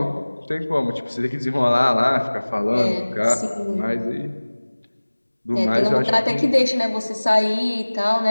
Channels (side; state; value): both; inverted; correlation -1.00